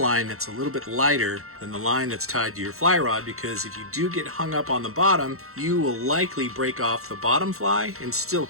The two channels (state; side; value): late; left; 0.63 ms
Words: that's a little bit lighter than the line that's tied to your fly rod, because if you do get hung up on the bottom, you will likely break off the bottom fly and still